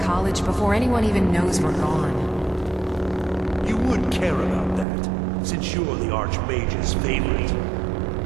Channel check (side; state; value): left; drops out; at 4.9 s